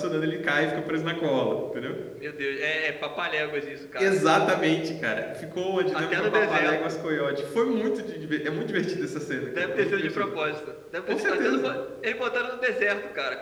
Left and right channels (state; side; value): identical; both; correlation 1.00